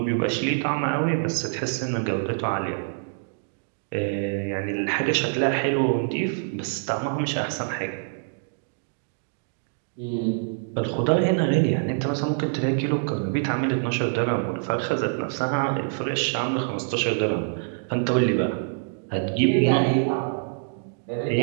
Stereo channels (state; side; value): silent; left; digital silence